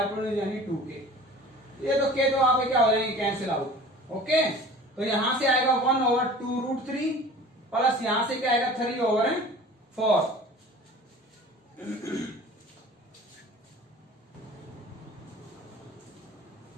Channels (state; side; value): normal; both; correlation 0.43